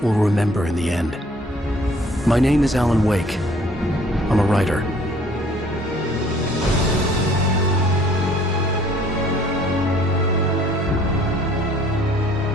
we'll remember in the end. My name is Alan Wake. I'm a writer.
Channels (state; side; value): normal; both; correlation 0.57